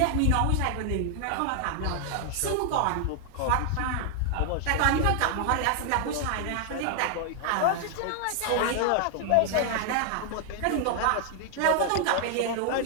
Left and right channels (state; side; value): different; both; correlation 0.00